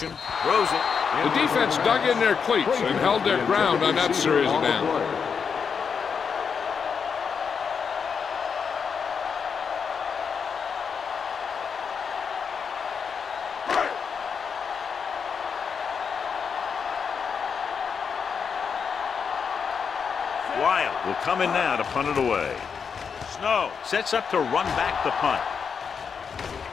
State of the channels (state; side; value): quieter; right; 6.3 dB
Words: Throws it. The defense dug in their cleats and held their ground on that series of downs. Lyle will come in now to punt it away. Snow sets up to run back the punt.